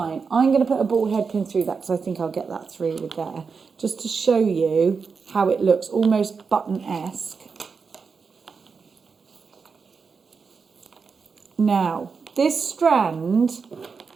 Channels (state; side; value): quieter; left; 5.3 dB